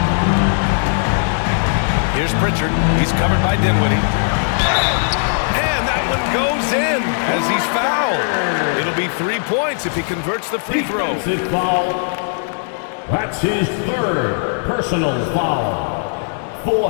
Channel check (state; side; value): silent; right; 67 dB below the other